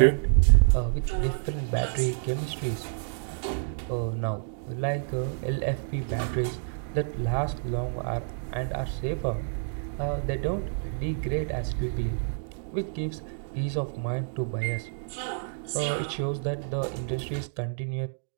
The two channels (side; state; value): left; silent; digital silence